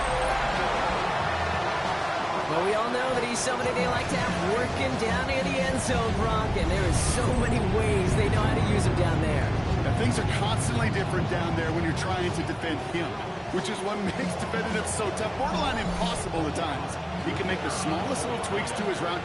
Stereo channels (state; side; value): identical; both; correlation 1.00